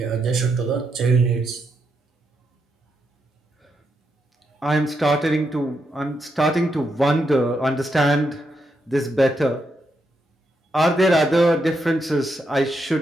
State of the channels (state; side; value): normal; both; correlation 0.81